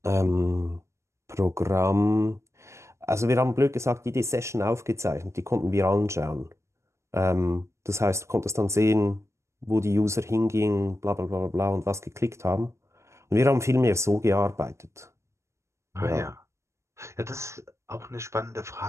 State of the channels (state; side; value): late; left; 0.14 ms